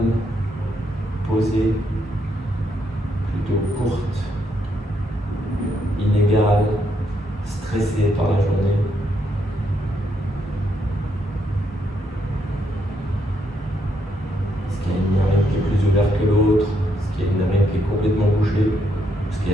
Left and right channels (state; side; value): normal; both; correlation 0.76